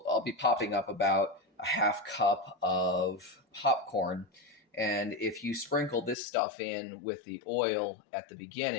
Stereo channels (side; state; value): right; drops out; at 6.2 s